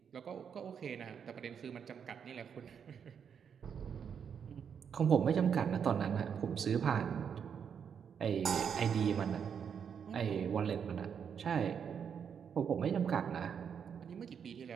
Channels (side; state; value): left; quieter; 7.4 dB